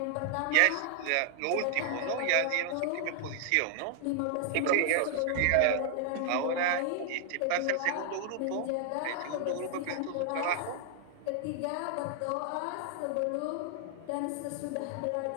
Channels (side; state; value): both; different; correlation -0.01